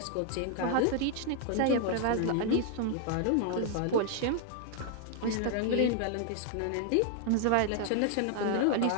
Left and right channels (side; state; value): both; different; correlation 0.00